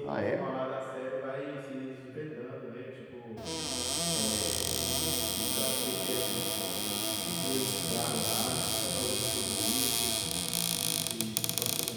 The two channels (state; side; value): identical; both; correlation 1.00